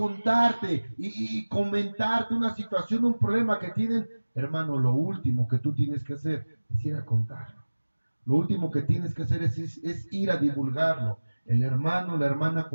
y comentarte una situación, un problema que tienen, hermano, lo último que tú tienes que hacer es ir a contarlo. Lo último que tienes que hacer es ir a divulgarlo. El hermano o la hermana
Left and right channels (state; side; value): inverted; both; correlation -1.00